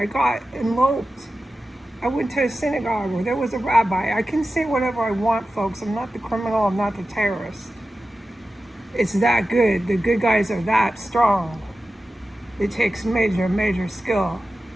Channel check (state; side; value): normal; both; correlation 0.94